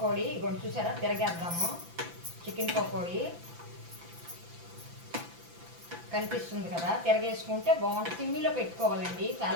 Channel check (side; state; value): left; late; 5.9 ms